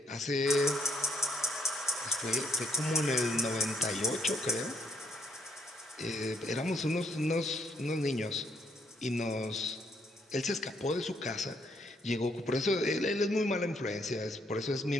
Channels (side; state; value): both; normal; correlation 0.70